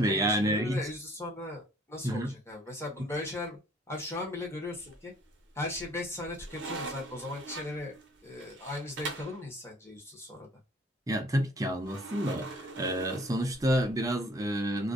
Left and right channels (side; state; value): both; normal; correlation 0.57